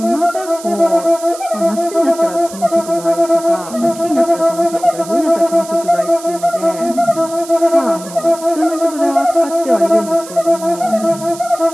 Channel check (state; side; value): noise; right; hiss, 16 dB below the sound